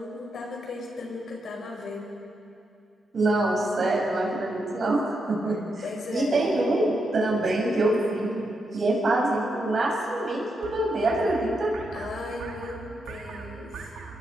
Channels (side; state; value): both; normal; correlation 0.83